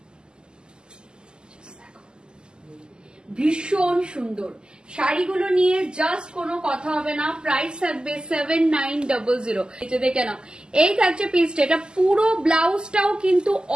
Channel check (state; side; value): late; left; 0.047 ms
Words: ভীষণ সুন্দর শাড়িগুলো নিয়ে জাস্ট কোনো কথা হবে না। প্রাইস থাকবে 7900। এটা দেখে নাও, এই থাকছে পিসটা। এটা পুরো ব্লাউজটাও কিন্তু